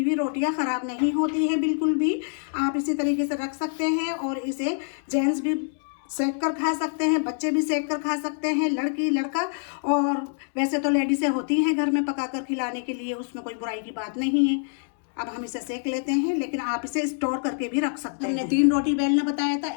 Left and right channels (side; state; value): right; silent; 61 dB below the other